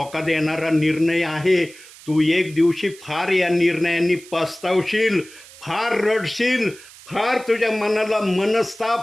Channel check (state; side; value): noise; right; hiss, 20 dB below the sound